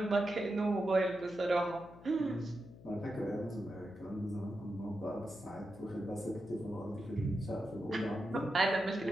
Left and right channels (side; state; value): left; noise; hum, 19 dB below the sound